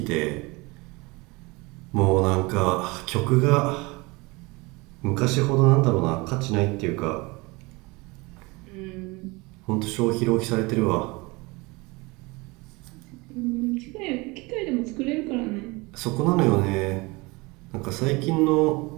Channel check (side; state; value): left; quieter; 25.0 dB